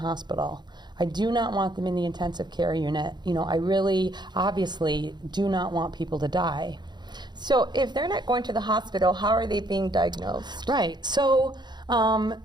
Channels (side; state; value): left; late; 0.21 ms